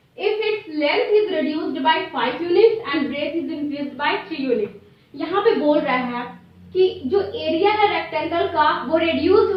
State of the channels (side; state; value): both; identical; correlation 1.00